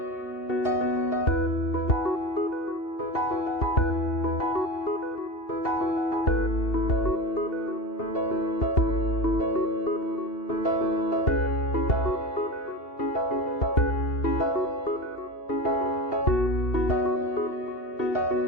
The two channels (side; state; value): right; late; 2.8 ms